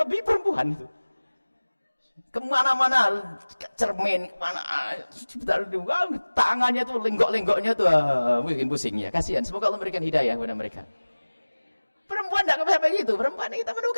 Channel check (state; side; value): inverted; both; correlation -1.00